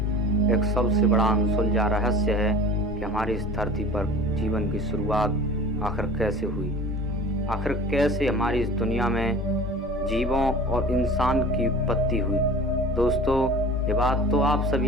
एक सबसे बड़ा अनसुलझा रहस्य है कि हमारी इस धरती पर जीवन की शुरुआत आखिर कैसे हुई। आखिर कैसे हमारी इस दुनिया में जीवों और इंसान की उत्पत्ति हुई। दोस्तों, ये बात तो आप सभी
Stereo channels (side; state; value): both; normal; correlation 0.40